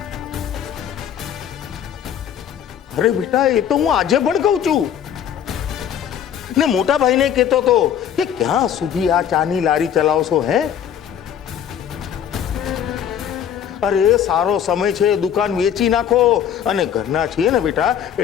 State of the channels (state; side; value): quieter; right; 9.2 dB